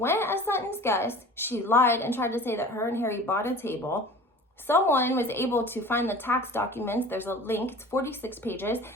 as Sutton's guest. She lied and tried to say that her and Harry bought a table. Someone was able to find the tax documents. There's a link. It's 46 pages.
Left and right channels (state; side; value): normal; both; correlation 0.41